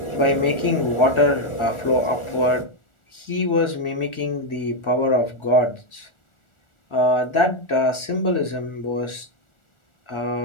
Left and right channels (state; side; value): late; right; 1.4 ms